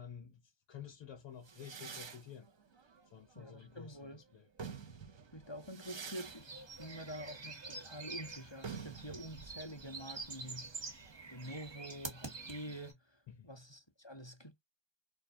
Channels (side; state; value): right; late; 1.2 ms